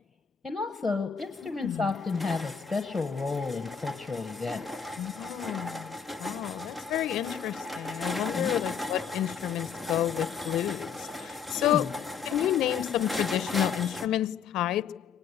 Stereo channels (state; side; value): quieter; right; 7.1 dB